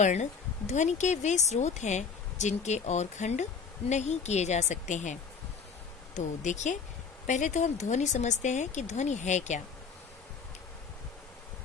ध्वनि के वे स्रोत हैं जिनके और खंड नहीं किए जा सकते हैं। तो देखिए, पहले तो हम ध्वनि समझते हैं कि ध्वनि है क्या।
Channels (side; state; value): right; quieter; 5.8 dB